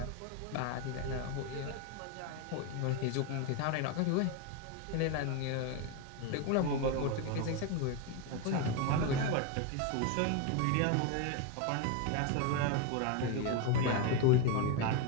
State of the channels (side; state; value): both; different; correlation 0.02